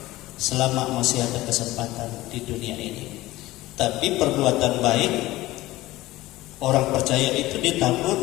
selama masih ada kesempatan di dunia ini. Tapi perbuatan baik orang percaya itu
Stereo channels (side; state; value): right; quieter; 17.8 dB